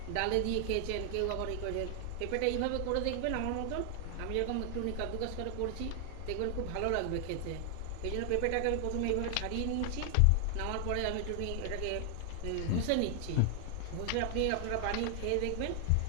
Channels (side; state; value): both; different; correlation 0.00